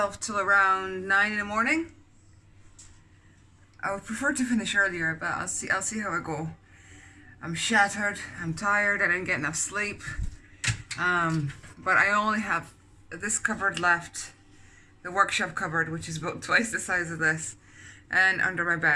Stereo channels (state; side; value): identical; both; correlation 1.00